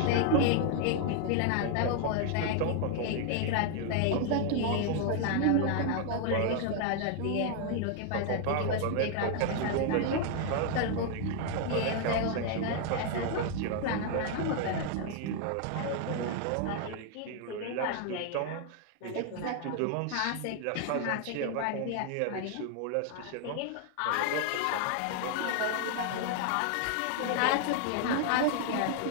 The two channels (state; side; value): different; both; correlation 0.00